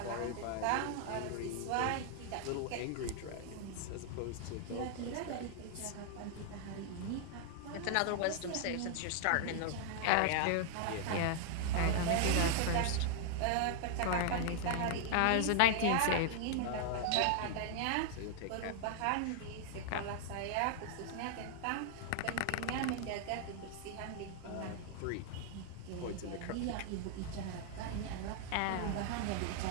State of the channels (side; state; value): both; different; correlation 0.00